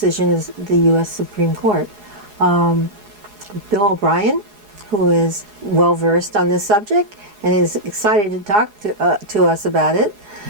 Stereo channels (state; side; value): late; left; 4.8 ms